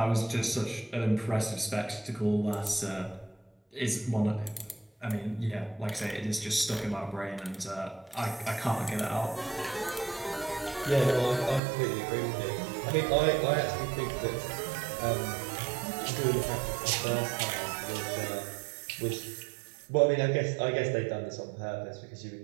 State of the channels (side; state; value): left; drops out; at 11.6 s